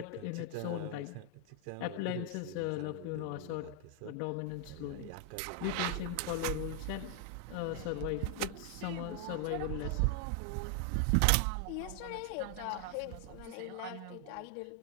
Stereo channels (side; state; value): both; different; correlation 0.00